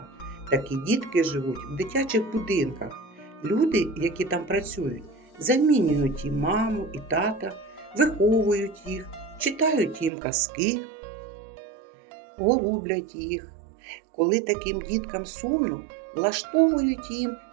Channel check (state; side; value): drops out; left; at 10.1 s